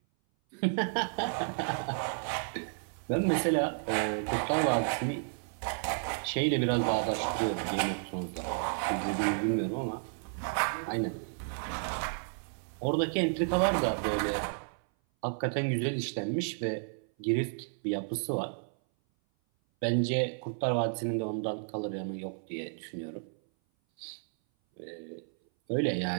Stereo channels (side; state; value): left; silent; 56 dB below the other